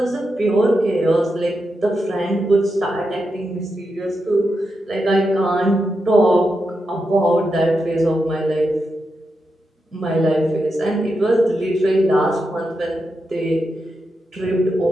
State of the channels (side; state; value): both; normal; correlation 0.87